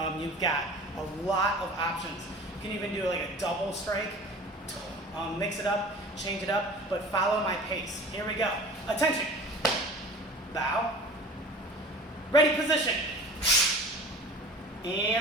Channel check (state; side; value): normal; both; correlation 0.40